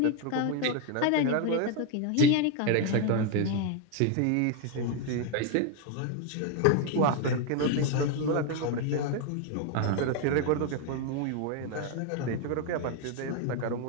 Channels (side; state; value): both; different; correlation 0.01